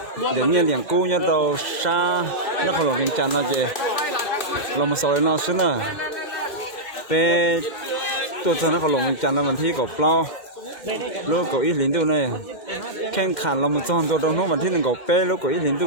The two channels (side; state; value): right; late; 2.1 ms